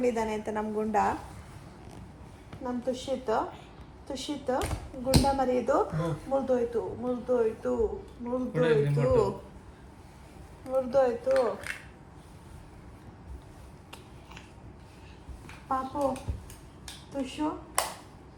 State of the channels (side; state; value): both; identical; correlation 1.00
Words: ಅಂತ. ನಮ್ಮ ಗುಂಡ, ನಮ್ಮ ತುಷಿತ್ ಗುಂಡ ಮರಿಯೋದು ಮುರಿದೋಯ್ತು. ಪಾಪು ತುಷು,